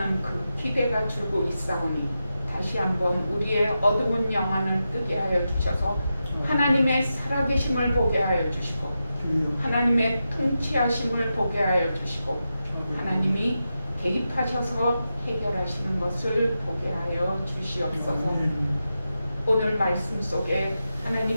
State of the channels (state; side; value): inverted; both; correlation -0.90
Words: 그 기대가 줄고 있사오니 다시 한번 우리의 어두운 영안을 뜨게 하여 주셔서 하나님의 살아계심을 보게 하여 주시고 하나님의 통치하심을 보게 하여 주시고 하나님이 개입하셔서 해결하시는 것을 보게 하여 주시옵소서. 오늘 말씀 속에